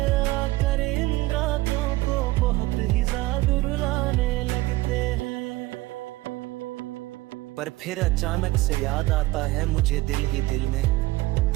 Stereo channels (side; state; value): left; quieter; 18.9 dB